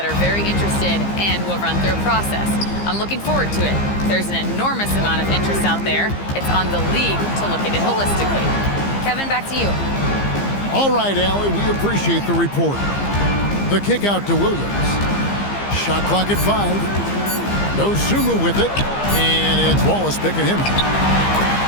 are very interested and will run through a process. I'm looking forward to it. There's an enormous amount of interest out there. It's on the league to look at it holistically. Kevin, back to you. All right, Allie, we appreciate the report. The kick out to Williams. Shot clock at 5. No Sumu with it. And it's Wallace picking him up.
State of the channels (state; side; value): late; right; 15 ms